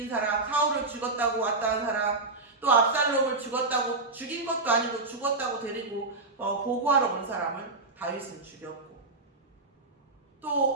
사람, 사울을 죽었다고 왔다는 사람 또 압살롬을 죽인 것도 아니고 죽었다고 데리고 보고하러 온 사람을 다윗은 죽였고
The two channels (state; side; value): quieter; left; 3.4 dB